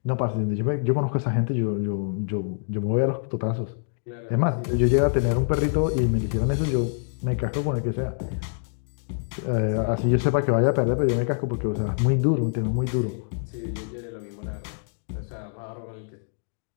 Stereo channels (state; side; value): silent; right; digital silence